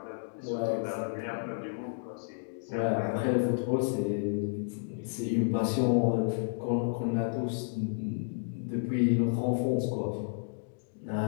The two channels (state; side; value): silent; right; digital silence